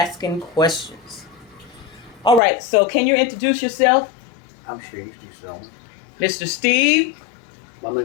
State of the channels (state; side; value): drops out; right; at 2.4 s